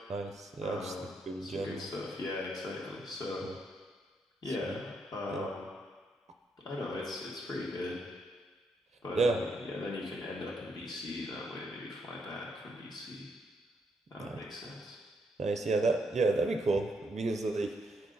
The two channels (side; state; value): both; normal; correlation 0.76